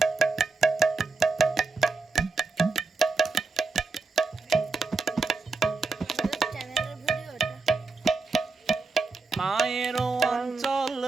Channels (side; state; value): left; quieter; 4.1 dB